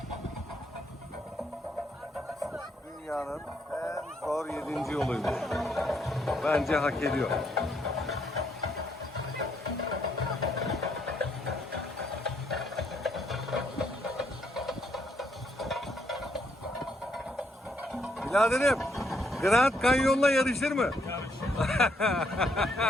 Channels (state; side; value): normal; both; correlation 0.73